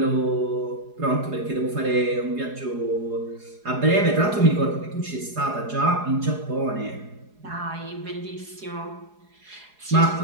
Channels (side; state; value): left; late; 4.8 ms